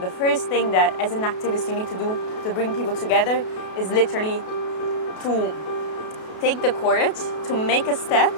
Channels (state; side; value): late; right; 32 ms